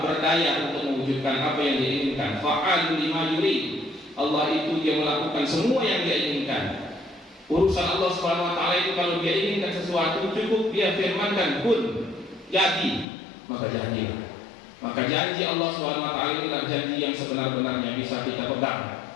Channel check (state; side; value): drops out; right; at 13.1 s